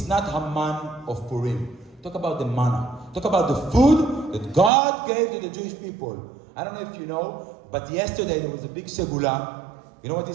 not Haman of Purim. Talk about the manna. Talk about the food that God gave to the Jewish people. I don't know if you know, but yesterday there was a big segula. You know what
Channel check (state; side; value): drops out; left; at 4.7 s